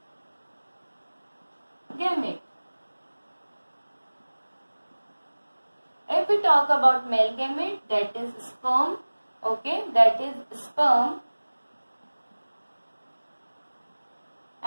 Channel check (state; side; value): inverted; both; correlation -1.00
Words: gamete. If we talk about male gamete, that is sperm, okay, that is sperm,